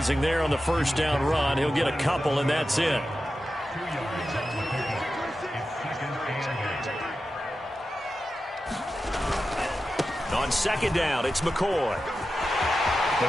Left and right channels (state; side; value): normal; both; correlation 0.92